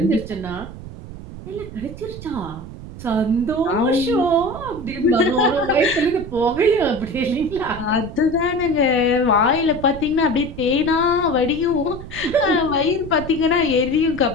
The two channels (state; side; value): noise; right; rumble, 12 dB below the sound